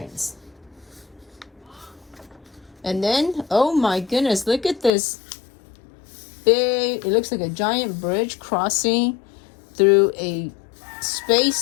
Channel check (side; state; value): right; drops out; at 4.9 s